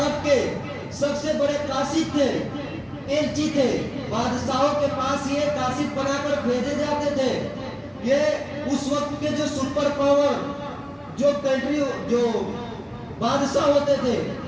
کے سب سے بڑے قاصد تھے، ایلچی تھے، بادشاہوں کے پاس یہ قاصد بنا کر بھیجے جاتے تھے۔ یہ اس وقت کے جو سپر پاور جو کنٹری جو بادشاہ ہوتے تھے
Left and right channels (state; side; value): identical; both; correlation 1.00